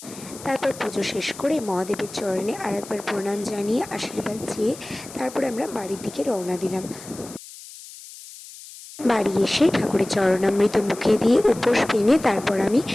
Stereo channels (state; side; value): noise; left; hiss, 16 dB below the sound